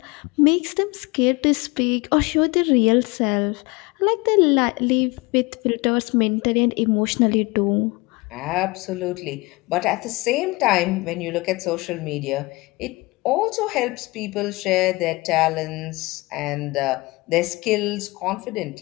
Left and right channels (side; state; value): right; quieter; 23.4 dB